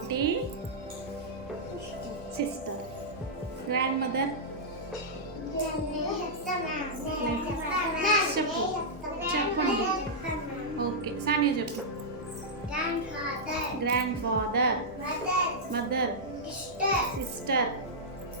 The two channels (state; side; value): normal; both; correlation -0.10